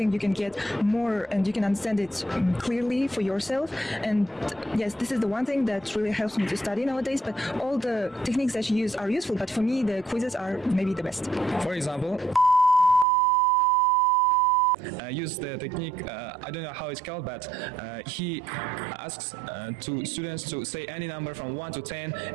you can get more and you can understand it clearly for yourself. And yes, this is the one thing that really helps me to study nowadays. But all the techniques that you use are useful, but for me, the quizzes are maybe the best. For example, use the technique, I don't know how it's called, but he asks to students to say any number from 1 to 10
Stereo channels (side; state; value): left; drops out; at 13.1 s